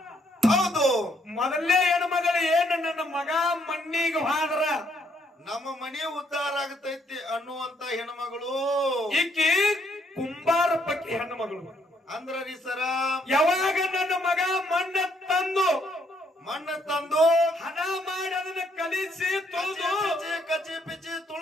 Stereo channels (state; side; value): normal; both; correlation 0.71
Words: ಹೌದು. ಮೊದಲೇ ಹೆಣ್ಮಗಳು ಏನು ನನ್ನ ಮಗ ಮಣ್ಣಿಗೆ ಹಾದ್ರ ನಮ್ಮ ಮನೆ ಉದ್ಧಾರ ಆಗತೈತಿ ಅನ್ನುವಂತ ಹೆಣ್ಮಗಳು. ಈಕಿ ಕುಂಬಾರ ಪಕ್ಕಿ ಹೆಣ್ಮಗಳು. ಅಂದ್ರ ರೀ ಸರ, ಯಾವಾಗ ನನ್ನ ಮಗ ಮಣ್ಣ ತಂದು ಹಣ ಮಾಡಿ ಅದನ್ನ ಕಲಿಸಿ ತೊಳೆದು ಕಚ್ಚಿ ಪಿಚ್ಚಿ